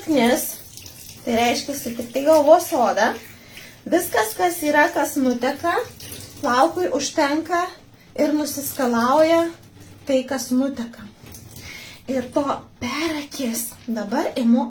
tai reiškia tik tai galvos odą, viskas, kas yra, kas nuteka, plaukui užtenka ir nusiskalauja tai, kas nuteka. Ir to per akis. Dabar imu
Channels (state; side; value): identical; both; correlation 1.00